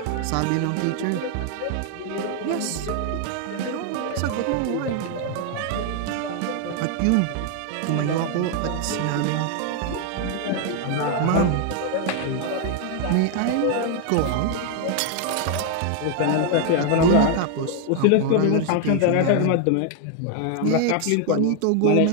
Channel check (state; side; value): different; both; correlation 0.00